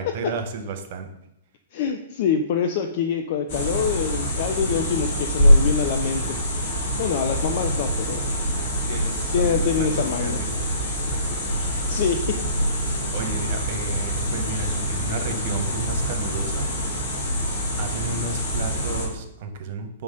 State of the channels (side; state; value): both; inverted; correlation -0.52